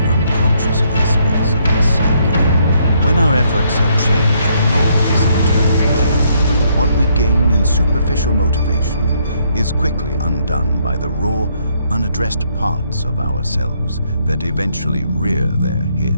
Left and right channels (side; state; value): both; inverted; correlation -0.71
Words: unconscious aspects of our psyche. When our efforts at change ignore this internal depth, what we gain in superficial motivation is quickly undone by the raw, unaddressed parts of ourselves that eventually rear their